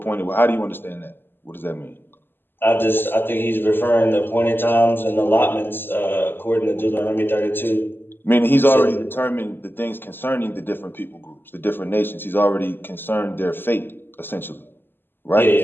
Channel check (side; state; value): right; late; 0.098 ms